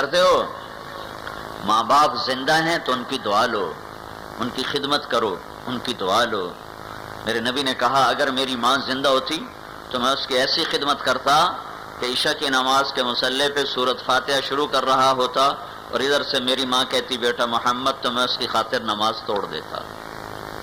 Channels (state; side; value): identical; both; correlation 1.00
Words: ہو ماں باپ زندہ ہیں تو ان کی دعا لو، ان کی خدمت کرو، ان کی دعا لو۔ میرے نبی نے کہا اگر میری ماں زندہ ہوتی تو میں اس کی ایسی خدمت کرتا کہ عشاء کی نماز کے مصلی پہ سورۃ فاتحہ شروع کر رہا ہوتا اور ادھر سے میری ماں کہتی بیٹا محمد، تو میں اس کی خاطر نماز توڑ دیتا۔